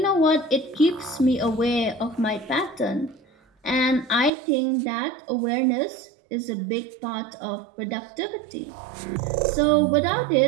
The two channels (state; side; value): drops out; left; at 4.3 s